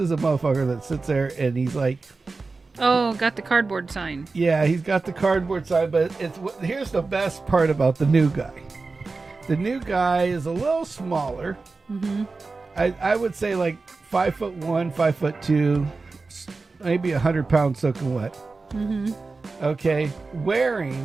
that sits there and he's like, Oh, got the cardboard sign. yeah, he's got the cardboard side, but here's the best part about the new guy. The new guy is a little smaller. I would say like 5'1", 5'2", maybe 100 pounds soaking wet. Okay,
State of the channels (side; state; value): left; quieter; 3.9 dB